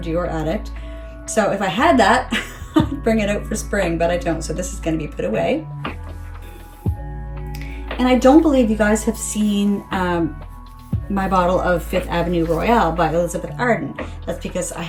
Dior Addict. So if I had that, I'd bring it out for spring, but I don't. So this is gonna be put away. And I don't believe you guys have seen my bottle of Fifth Avenue Royale by Elizabeth Arden. That's because I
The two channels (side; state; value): both; identical; correlation 1.00